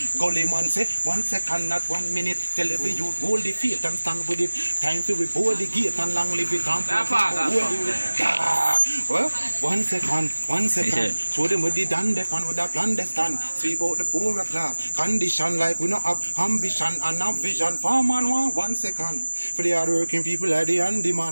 Gully man say 1 second, not 1 minute. Tell every youth hold the faith and stand with it. Time to board the gate and long live it. Well, 1 second, 1 second. Show them what they done, they pan with a plan they stand. Speak out the poorer class. Condition like we not have ambition and have vision. For man 1 second. For the hardworking people like the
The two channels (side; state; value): both; inverted; correlation -1.00